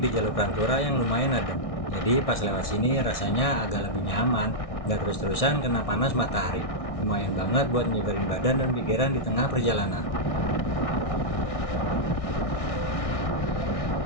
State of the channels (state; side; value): late; right; 1.6 ms